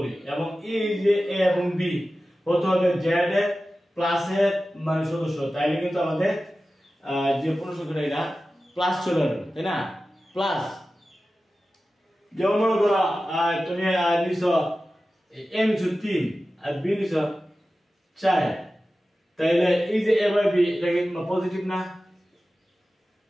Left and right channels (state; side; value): normal; both; correlation 0.95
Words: এবং এই যে a এবং b হতে হবে z এর প্লাস এর মানে সদস্য, তাইলে কিন্তু আমাদের যে পূর্ণ সংখ্যাটা এটা প্লাস চলে আসবে, তাই না? প্লাস যেমন মনে করো তুমি নিছো a নিছো 3 আর b নিছো 4, তাইলে এই যে a বাই b এটা কি পজিটিভ না?